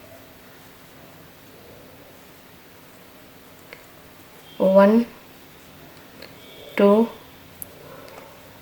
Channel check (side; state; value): both; identical; correlation 1.00